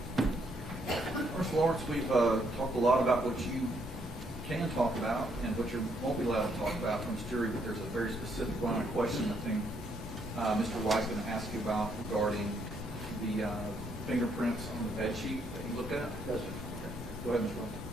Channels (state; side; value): normal; both; correlation 0.72